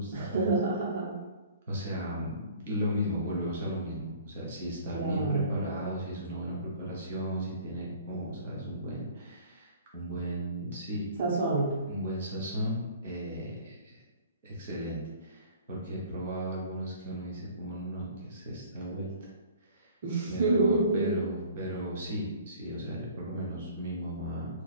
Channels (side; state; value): both; inverted; correlation -0.49